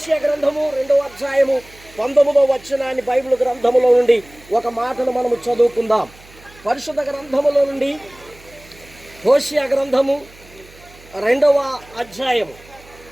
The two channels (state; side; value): noise; right; hum, 24 dB below the sound